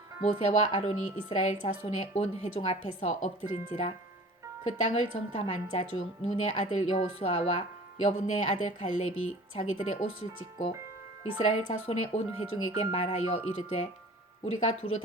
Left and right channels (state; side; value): normal; both; correlation 0.45